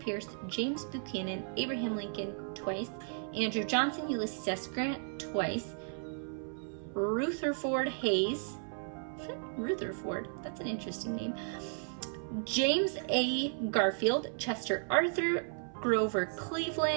James Buchanan, Abraham Lincoln twice, Andrew Johnson, Ulysses S. Grant twice, Rutherford Hayes, Rutherford, that's an interesting name, James A. Garfield, Chester Arthur, Grover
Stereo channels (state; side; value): silent; left; 55 dB below the other